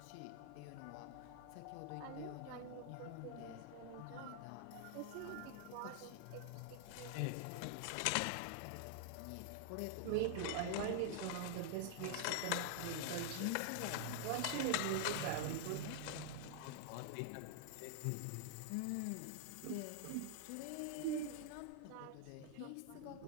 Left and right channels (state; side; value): different; both; correlation 0.00